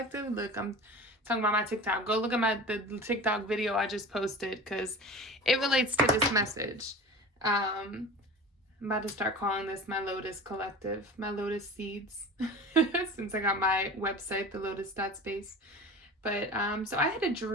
Look, I'm talking about my TikTok. Go look at the TikTok video I just posted because it relates to this message. I'm about to start calling this my Lotus Collective, my Lotus Seeds, since I got my website, the Lotus.space. But so I had a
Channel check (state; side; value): normal; both; correlation 0.36